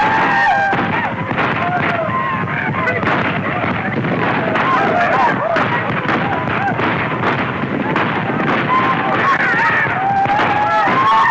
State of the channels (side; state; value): both; identical; correlation 1.00